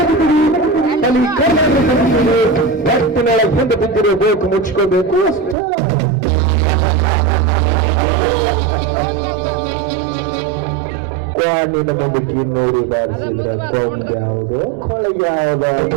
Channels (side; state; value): left; drops out; at 5.6 s